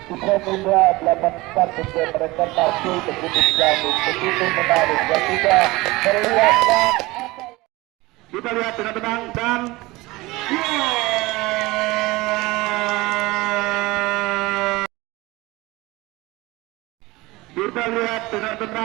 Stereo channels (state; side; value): quieter; left; 21.1 dB